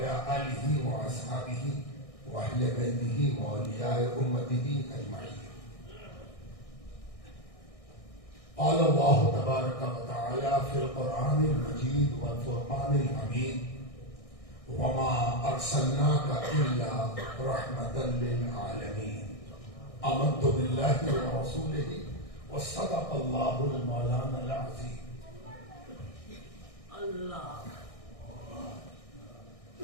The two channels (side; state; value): right; late; 1.6 ms